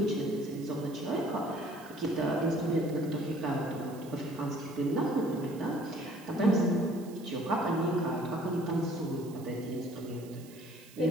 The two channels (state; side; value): noise; right; hiss, 21 dB below the sound